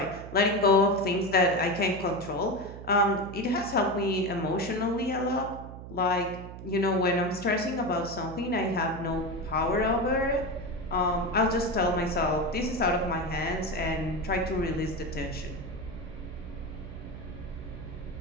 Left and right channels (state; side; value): noise; right; hum, 12 dB below the sound